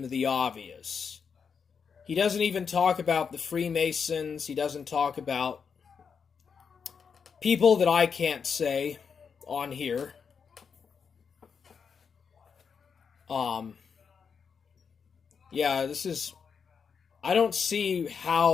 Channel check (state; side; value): quieter; right; 6.2 dB